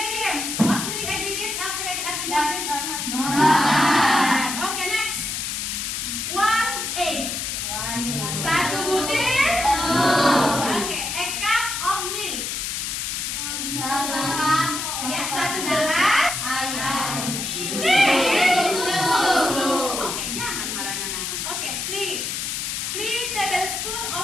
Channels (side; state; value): left; noise; hiss, 3 dB below the sound